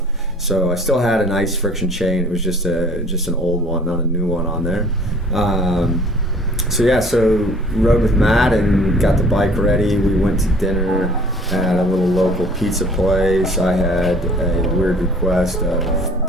So I still had an ice friction chain. It was just an old one, not a new one on there. So rode with Matt and got the bike ready. We went to dinner at a little local pizza place. I had a weird request of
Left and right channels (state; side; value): normal; both; correlation 0.53